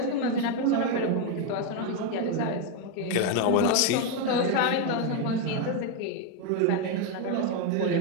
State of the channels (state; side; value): different; both; correlation 0.02